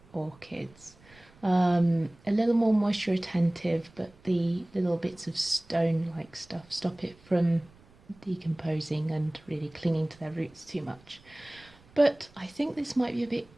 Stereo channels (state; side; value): noise; right; rumble, 27 dB below the sound